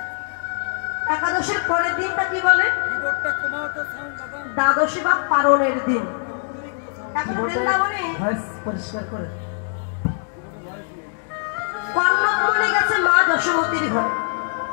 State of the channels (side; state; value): right; silent; digital silence